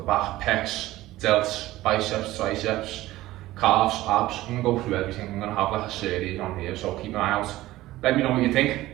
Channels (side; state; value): left; quieter; 16.6 dB